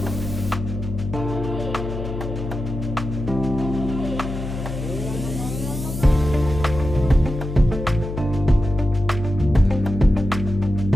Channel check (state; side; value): noise; left; hum, 6 dB below the sound